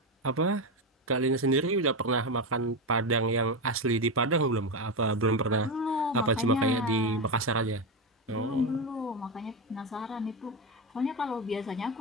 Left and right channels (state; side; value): normal; both; correlation 0.13